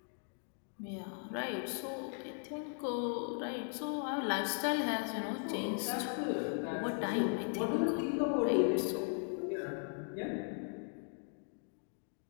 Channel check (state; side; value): silent; right; 52 dB below the other